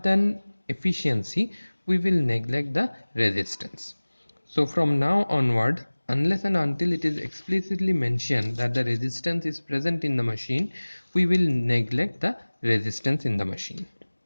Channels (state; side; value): inverted; both; correlation -1.00